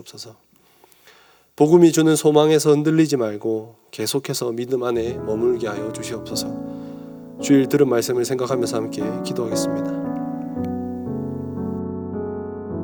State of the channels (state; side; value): identical; both; correlation 1.00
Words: 복음이 주는 소망에서 흔들리지 말고 계속해서 믿음 안에 머물게 하여 주시옵소서. 주일 들은 말씀을 생각하면서 함께 기도하겠습니다.